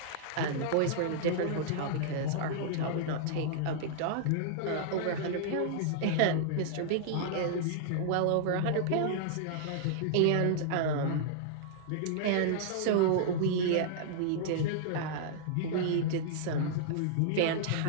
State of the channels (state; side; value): different; both; correlation -0.02